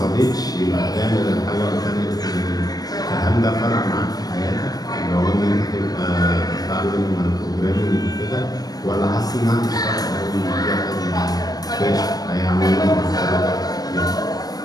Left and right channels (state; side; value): late; right; 0.19 ms